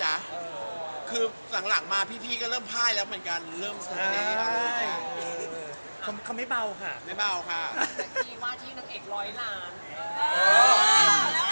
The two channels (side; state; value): both; inverted; correlation -1.00